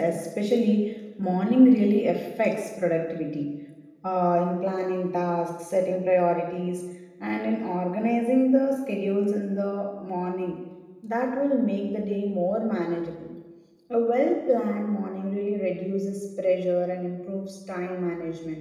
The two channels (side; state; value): both; identical; correlation 1.00